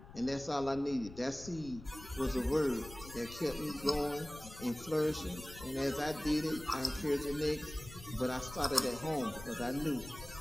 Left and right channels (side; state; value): left; noise; rumble, 15 dB below the sound